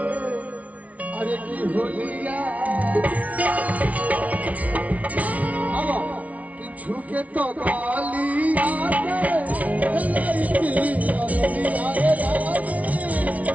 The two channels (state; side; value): late; left; 0.069 ms